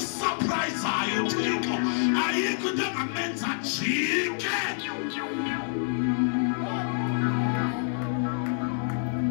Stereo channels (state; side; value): silent; right; digital silence